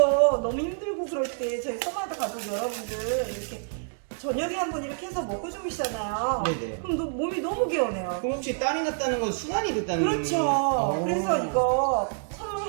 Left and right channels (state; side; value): silent; left; digital silence